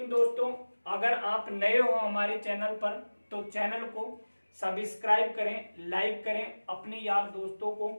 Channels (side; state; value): both; inverted; correlation -1.00